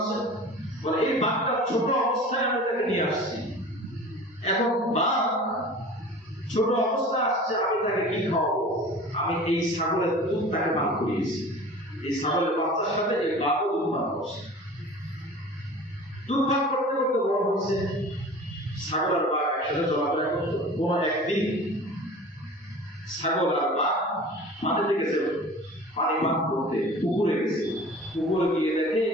বলে এই বাঘটা ছোট অবস্থায় আমি তাকে নিয়ে আসছি, এখন বাঘ ছোট অবস্থা আসছে, আমি তাকে কি খাওয়াবো? আমি এই ছাগলের দুধ তাকে পান করিয়েছি, এই ছাগলের বাচ্চার সাথে এই বাঘও দুধ পান করছে, দুধ পান করতে করতে বড় হচ্ছে। ছাগল আর বাঘ একসাথে চলাফেরা করতো, কোন একদিন ছাগল আর বাঘ মাটিতে গেছে পানি পান করতে, পুকুরে গেছে, পুকুরে গিয়ে দেখে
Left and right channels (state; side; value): normal; both; correlation 0.40